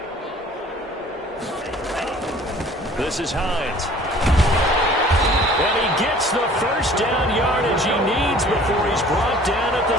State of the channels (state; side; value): normal; both; correlation 0.51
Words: This is Hines. And he gets the first down yardage he needs before he's brought down at the